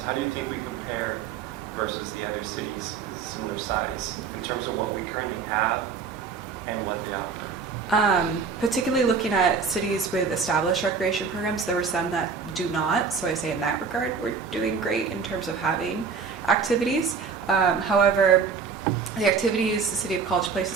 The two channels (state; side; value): quieter; left; 5.6 dB